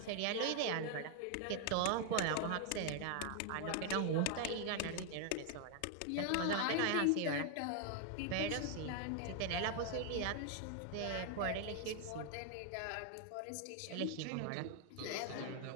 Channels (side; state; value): both; different; correlation 0.01